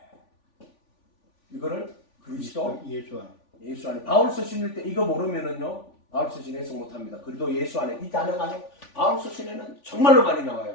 이거를 그리스도 예수 안에 바울 서신일 때 이거 모르면은요 바울 서신 해석 못합니다. 그래도 예수 안에 이 단어가 바울 서신에는 정말로 많이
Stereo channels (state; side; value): late; right; 3.5 ms